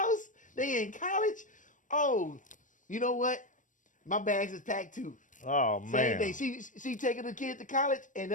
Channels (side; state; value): right; late; 0.37 ms